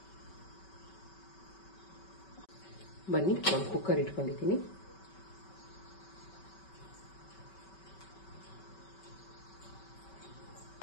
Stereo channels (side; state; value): right; late; 5.2 ms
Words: ಬನ್ನಿ, ಒಂದು ಕುಕ್ಕರ್ ಇಟ್ಕೊಂಡಿದ್ದೀನಿ.